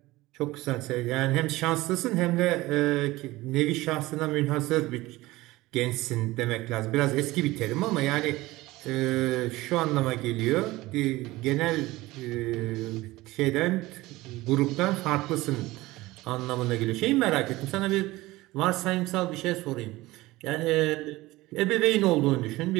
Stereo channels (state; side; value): quieter; left; 19.1 dB